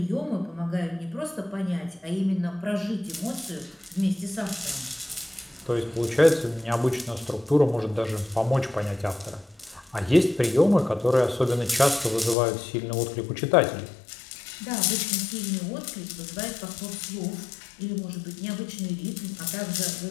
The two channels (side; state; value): right; drops out; at 12.4 s